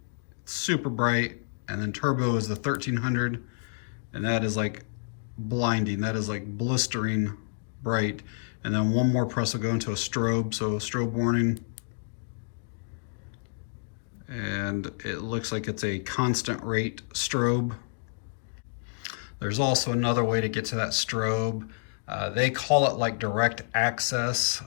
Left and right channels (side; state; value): right; silent; digital silence